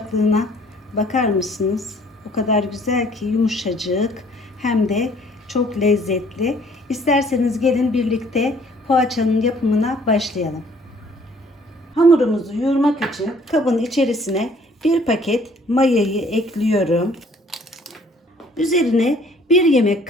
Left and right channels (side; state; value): both; normal; correlation 0.58